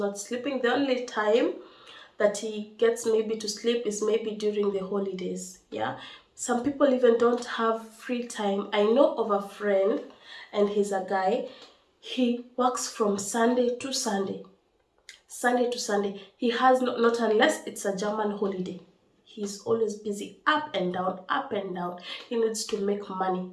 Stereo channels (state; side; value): identical; both; correlation 1.00